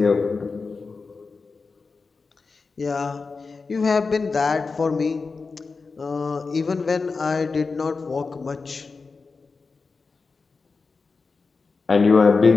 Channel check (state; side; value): quieter; right; 4.4 dB